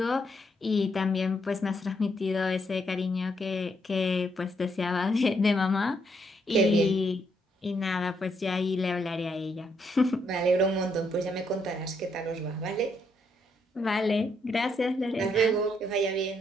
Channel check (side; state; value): both; normal; correlation 0.75